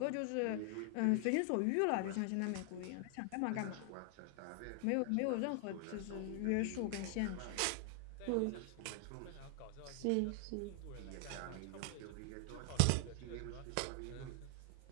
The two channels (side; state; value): both; different; correlation 0.00